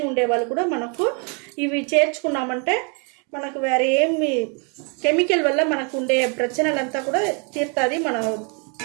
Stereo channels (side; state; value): left; quieter; 36.3 dB